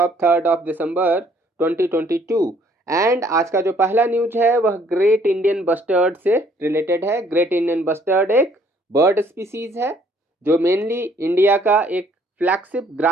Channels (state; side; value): normal; both; correlation 0.62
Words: 3rd of December 2022 and आज का जो पहला news है वह great Indian bustard से related है। Great Indian bustard एक bird species है जो मेनली इंडिया का एक फ्लैगशिप